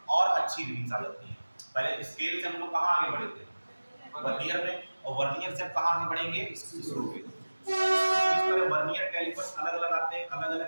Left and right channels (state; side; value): inverted; both; correlation -1.00